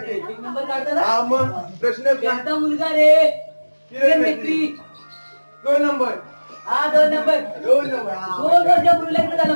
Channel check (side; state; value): both; inverted; correlation -1.00